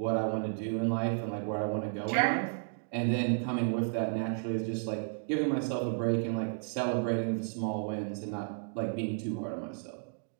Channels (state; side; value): silent; left; digital silence